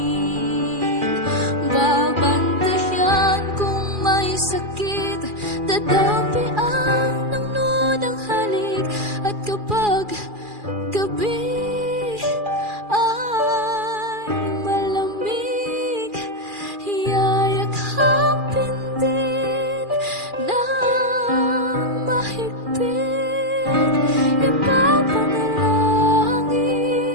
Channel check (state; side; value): late; left; 2.4 ms